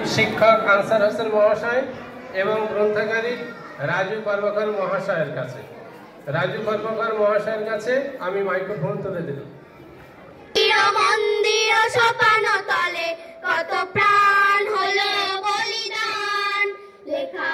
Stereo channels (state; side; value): identical; both; correlation 1.00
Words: শিক্ষক আনসার হোসেন মহাশয় এবং গ্রন্থাগারিক রাজু কর্মকার মহাশয়ের কাছে আমি মাইক্রোফোন তুলে দিলাম। মন্দির সোপান তলে কত প্রাণ হলো বলিদান, লেখা